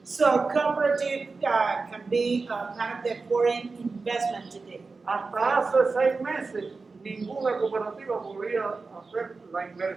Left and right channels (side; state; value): left; quieter; 4.1 dB